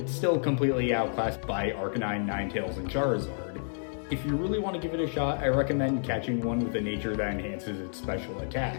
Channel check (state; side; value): silent; right; digital silence